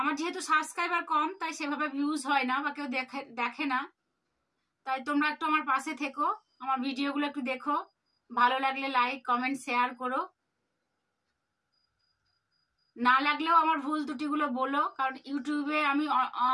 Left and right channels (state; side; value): identical; both; correlation 1.00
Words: যেহেতু সাবস্ক্রাইবার কম, তাই সেভাবে ভিউজ হয় না বা কেউ দেখে না। তাই তোমরা একটু আমার পাশে থেকো, আমার ভিডিওগুলো একটু দেখো, ভালো লাগলে লাইক কমেন্ট শেয়ার করো। না লাগলেও আমার ভুল ত্রুটিগুলো বলো, কারণ ইউটিউবে আমি